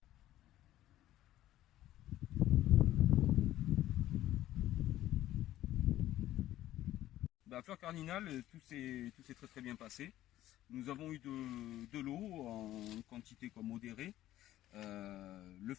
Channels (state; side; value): quieter; right; 13.9 dB